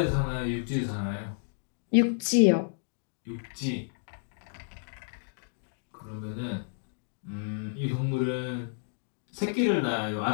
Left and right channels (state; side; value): silent; right; digital silence